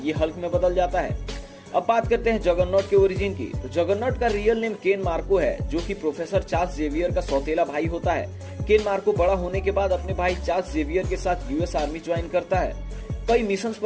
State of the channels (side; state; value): both; identical; correlation 1.00